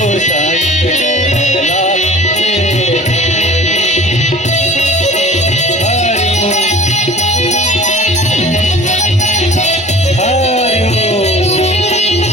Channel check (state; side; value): normal; both; correlation 0.43